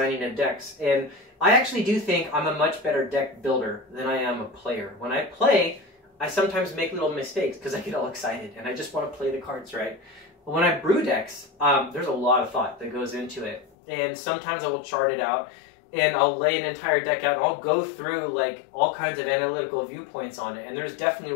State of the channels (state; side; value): drops out; right; at 13.7 s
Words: of decks. And I actually do think I'm a much better deck builder than I am a player. When I play, I sometimes make little mistakes because I get all excited and I just want to play the cards right. But when I brew decks, there's a lot of thought that goes into it. And sometimes I will chart it out, and I'll lay an entire deck out, and I'll go through like all kinds of analytical viewpoints on it, and there's definitely